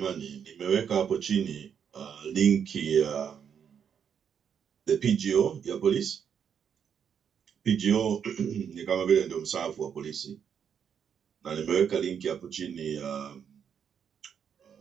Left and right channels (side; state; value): left; quieter; 7.7 dB